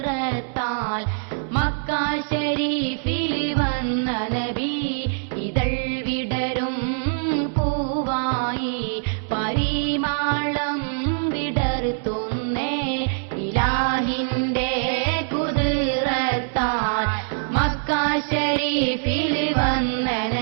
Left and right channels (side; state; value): left; silent; 63 dB below the other